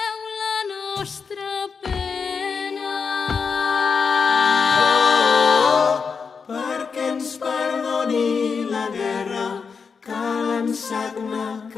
la nostra pena. Perquè ens perdoni la guerra, que l'ensagna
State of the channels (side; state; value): right; quieter; 5.6 dB